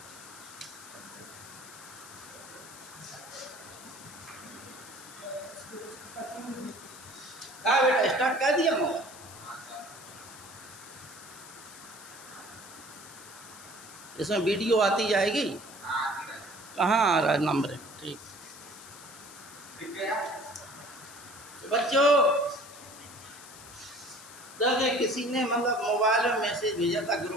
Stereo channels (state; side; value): noise; left; hiss, 16 dB below the sound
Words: हाँ बेटा, स्टार्ट कर दिया मोबाइल? इसमें वीडियो आती जाएगी? कहाँ आ रहा है नंबर? ठीक। तो बच्चों देखिए, किसी ने मतलब मोबाइल में मैसेज भेजा था